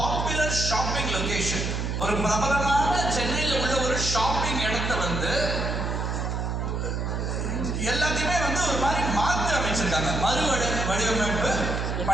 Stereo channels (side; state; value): right; noise; hum, 1 dB below the sound